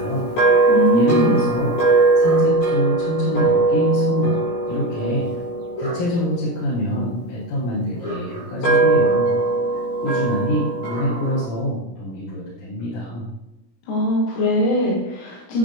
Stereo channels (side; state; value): right; late; 17 ms